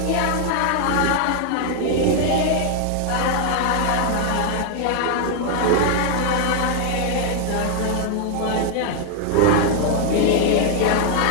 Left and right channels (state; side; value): different; both; correlation 0.00